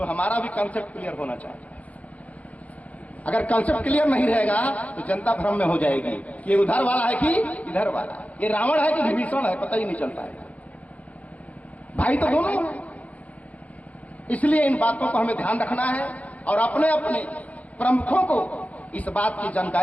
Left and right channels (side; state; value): right; late; 0.069 ms